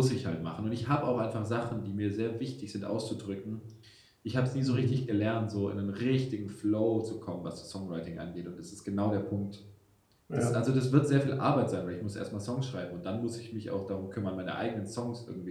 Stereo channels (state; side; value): identical; both; correlation 1.00